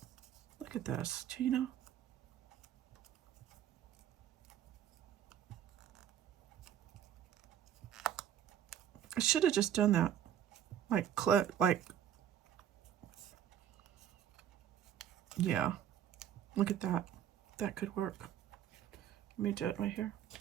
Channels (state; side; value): quieter; left; 10.1 dB